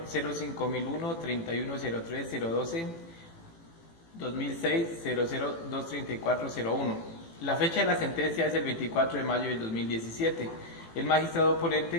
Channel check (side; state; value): right; late; 18 ms